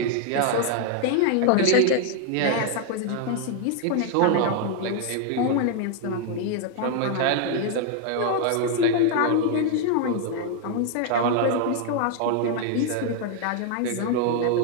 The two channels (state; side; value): different; both; correlation 0.00